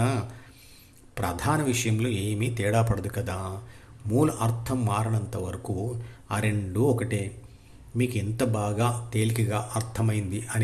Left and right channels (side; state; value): both; identical; correlation 1.00